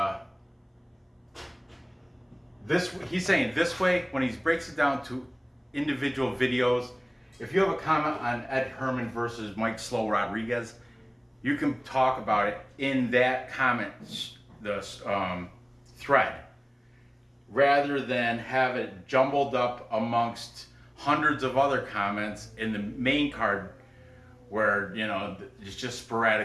he's saying this way, when he breaks it down to individual videos, if you have a comment on Ed Herman versus Mike Slow Rodriguez, you can talk about it in that comment thread, rather than have it jumbled up amongst hundreds of other comments in the main card where it's just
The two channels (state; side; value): identical; both; correlation 1.00